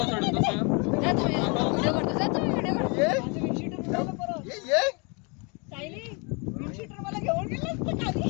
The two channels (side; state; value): right; quieter; 32.5 dB